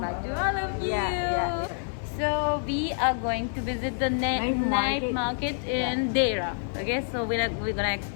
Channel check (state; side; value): silent; right; digital silence